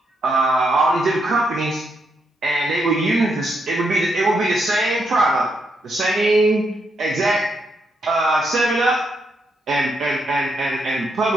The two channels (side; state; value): both; normal; correlation 0.79